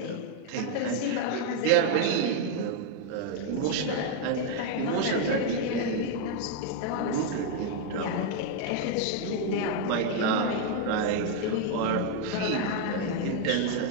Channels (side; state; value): both; different; correlation 0.00